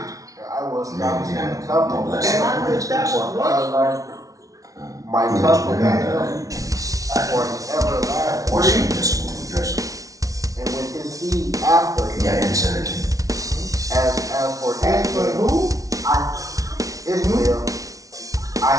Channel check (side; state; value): left; late; 0.17 ms